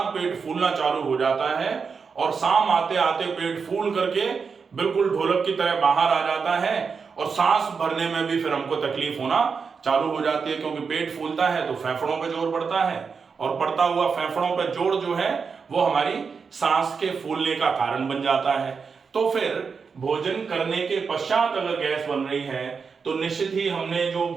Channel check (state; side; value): quieter; left; 5.5 dB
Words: पेट फूलना चालू हो जाता है और शाम आते आते पेट फूल करके बिल्कुल ढोलक की तरह बाहर आ जाता है और सांस भरने में भी फिर हमको तकलीफ होना चालू हो जाती है, क्योंकि पेट फूलता है तो फेफड़ों पे जोर पड़ता है और पड़ता हुआ फेफड़ों पे जोर जो है वो हमारी सांस के फूलने का कारण बन जाता है। तो फिर भोजन करने के पश्चात अगर गैस बन रही है तो निश्चित ही हमने जो